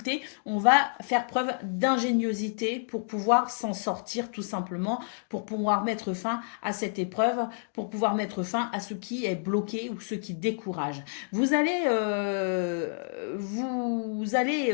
on va faire preuve d'ingéniosité pour pouvoir s'en sortir tout simplement, pour pouvoir mettre fin à cette épreuve, pour pouvoir mettre fin à ce qui est bloqué ou ce qui décourage. Vous allez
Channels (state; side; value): silent; right; digital silence